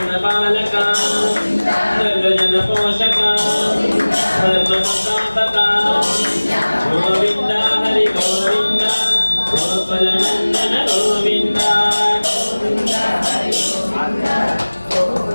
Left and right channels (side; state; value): both; inverted; correlation -1.00